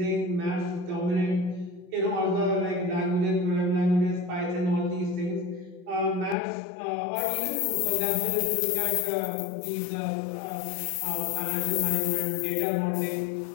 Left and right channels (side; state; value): right; drops out; at 6.4 s